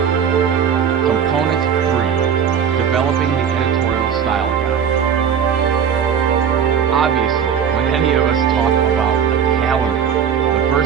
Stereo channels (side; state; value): left; quieter; 7.7 dB